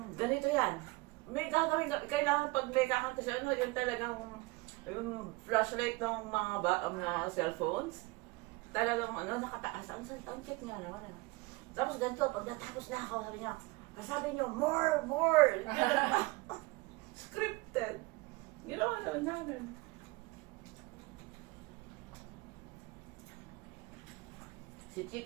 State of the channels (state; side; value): quieter; left; 23.7 dB